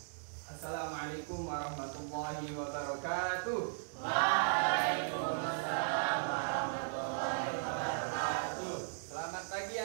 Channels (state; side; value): silent; left; digital silence